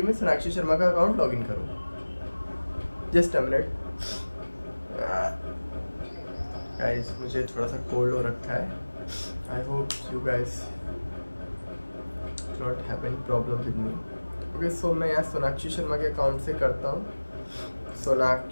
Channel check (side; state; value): both; inverted; correlation -1.00